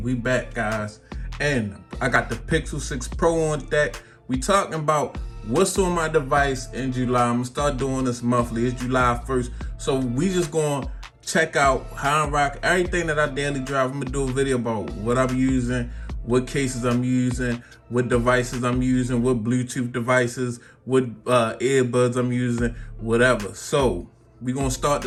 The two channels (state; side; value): identical; both; correlation 1.00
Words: we back, guys. And I got the Pixel 6 Pro on deck. We talking about what's on my device in July. I'm gonna start doing this monthly. It's July 1st, so we just gonna check out how I rock everything that I daily drive. I'm gonna do a video about what I'm using, what cases I'm using, what devices I'm using, what Bluetooth devices, what earbuds I'm using, whatever. So we're gonna start